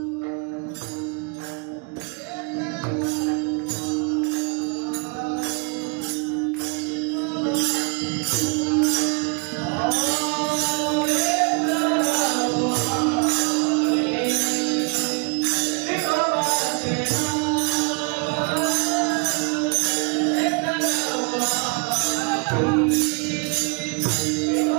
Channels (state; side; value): quieter; left; 34.3 dB